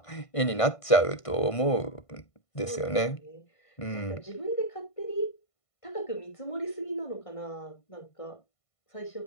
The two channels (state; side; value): late; right; 1.5 ms